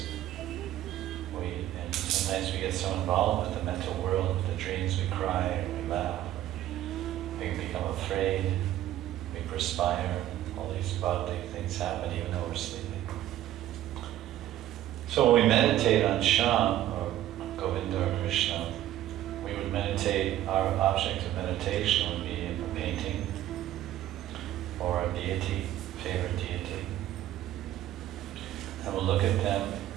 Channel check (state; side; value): quieter; left; 13.2 dB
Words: And sometimes we get so involved with the mental world, with the dreams, we cry, or we laugh, we become afraid, we perspire, all these bodily things happen even though we're sleeping. So when we meditate on Shyam, or Govinda or Krishna, we would meditate, our object of meditation would be a painting, or a deity, favorite deity. And we'll look at them,